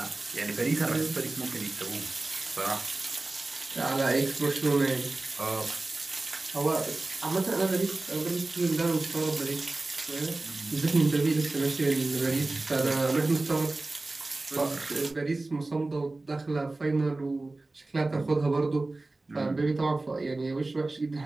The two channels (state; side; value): quieter; left; 3.1 dB